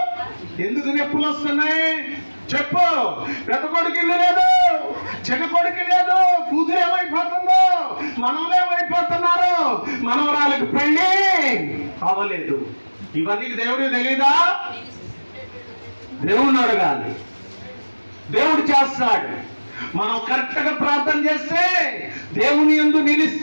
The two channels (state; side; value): inverted; both; correlation -1.00